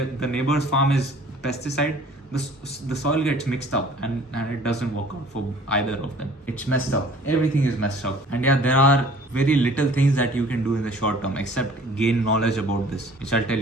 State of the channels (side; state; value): both; normal; correlation 0.50